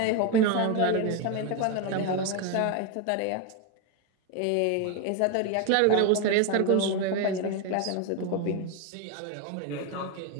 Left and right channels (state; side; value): different; both; correlation 0.02